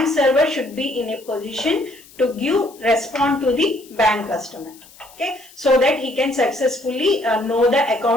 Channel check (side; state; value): left; noise; hiss, 24 dB below the sound